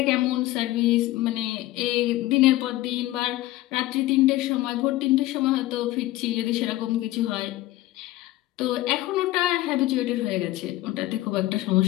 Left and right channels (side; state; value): right; quieter; 16.7 dB